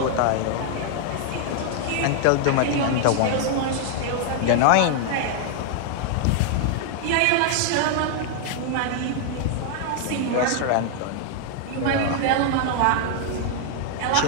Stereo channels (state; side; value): different; both; correlation 0.00